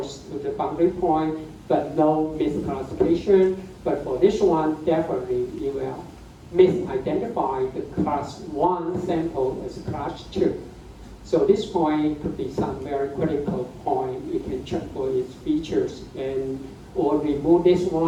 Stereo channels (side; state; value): both; identical; correlation 1.00